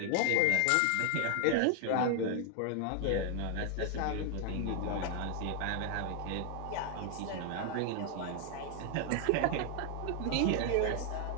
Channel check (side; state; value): both; different; correlation 0.00